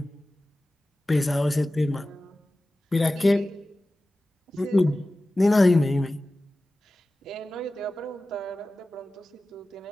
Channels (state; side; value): normal; both; correlation 0.96